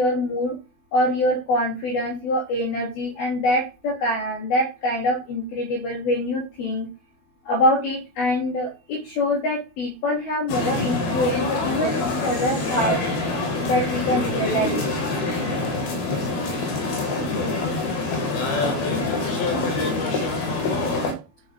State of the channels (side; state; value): right; late; 12 ms